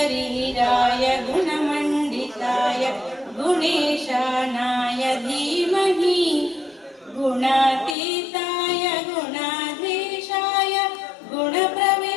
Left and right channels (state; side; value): drops out; right; at 8.0 s